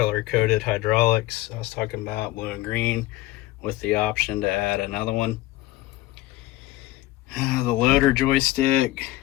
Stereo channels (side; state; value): right; quieter; 17.2 dB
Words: hydraulics I was talking about, blue and green, with the option to add another one. The loader joystick